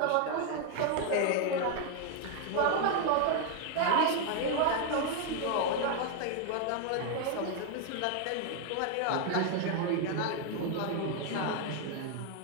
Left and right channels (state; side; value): different; both; correlation 0.00